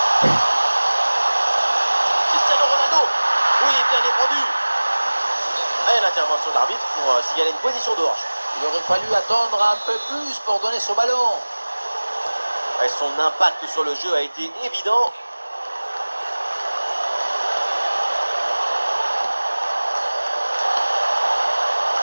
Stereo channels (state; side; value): inverted; both; correlation -1.00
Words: Cristiano Ronaldo. Oui, bien défendu. Et l'intervention de l'arbitre pour signaler une position de hanche. Il aurait fallu attendre un peu plus pour donner ce ballon. Et son impact sur le jeu a été évident.